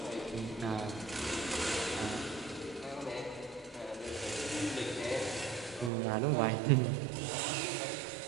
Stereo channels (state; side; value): drops out; left; at 5.9 s